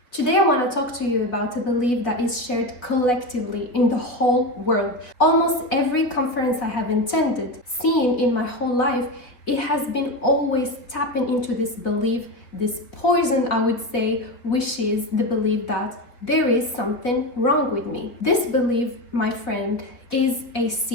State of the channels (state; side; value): late; right; 4.0 ms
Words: Today I want to talk to you about a belief that is shared collectively in the whole world. Almost every conference I have attended, seen in my whole life, it has been always tapping into this belief, this poison I would say, which is the belief that there is something wrong with me. This belief, my friend, is a